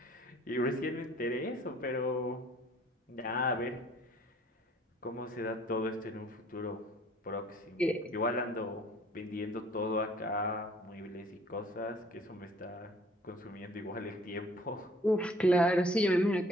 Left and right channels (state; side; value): normal; both; correlation 0.56